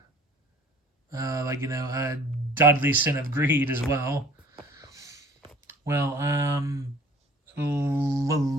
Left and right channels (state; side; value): normal; both; correlation 0.50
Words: deadly sin of greed as well. Well,